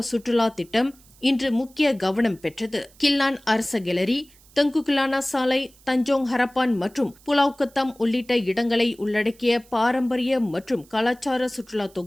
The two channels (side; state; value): right; noise; hiss, 27 dB below the sound